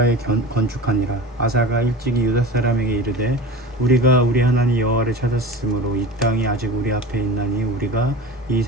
건축하니라. 아사가 일찍이 유다 사람에게 이르되 우리가 우리 하나님 여호와를 찾았으므로 이 땅이 아직 우리 앞에 있나니 우리가 이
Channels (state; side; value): normal; both; correlation 0.32